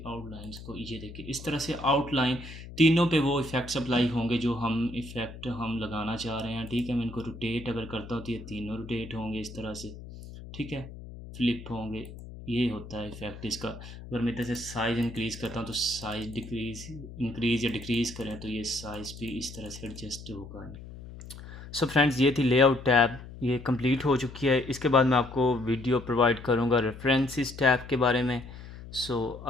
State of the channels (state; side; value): noise; left; hum, 14 dB below the sound